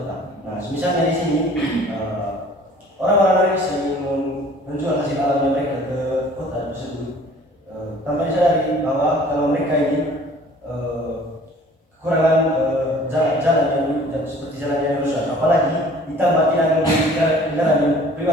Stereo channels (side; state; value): both; normal; correlation 0.51